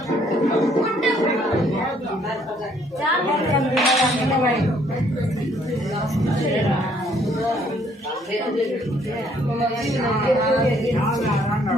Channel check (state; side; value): normal; both; correlation 0.65